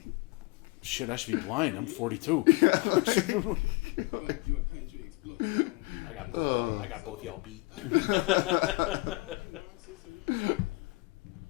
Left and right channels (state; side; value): quieter; right; 24.6 dB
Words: Shit, I should be blind. I'm 42. You're a country explodes. I got both. I got both y'all beat.